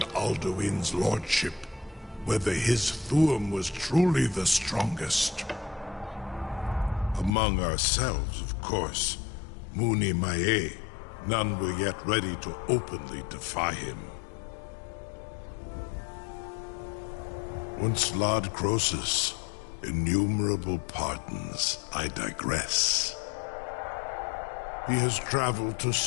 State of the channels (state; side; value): drops out; right; at 7.3 s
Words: Alduin's lordship, whether his Thuum was truly the strongest. Among ourselves, of course, Muni Mae, none were yet ready to openly defy him. Once Lord Croesus, innumerable pardons, I digress. He has traveled to